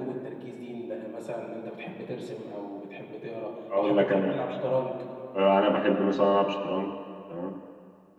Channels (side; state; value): both; identical; correlation 1.00